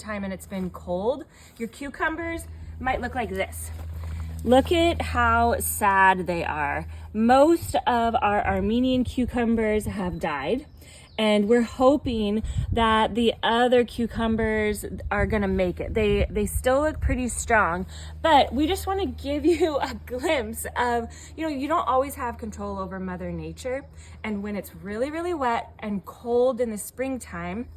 and it's been cold, your cucumbers might look like this. Look at how sad they are. Most of our Armenian cucumbers have died, and we're hoping that the other cucumbers are gonna make it. They still look pretty strong, but we just wanna give you a glimpse of, you don't always have control over Mother Nature, and when it's really, really wet and cold in the springtime,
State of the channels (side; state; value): both; identical; correlation 1.00